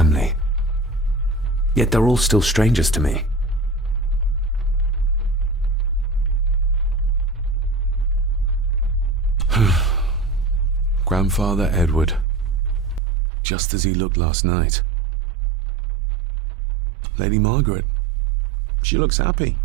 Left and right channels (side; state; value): left; drops out; at 13.0 s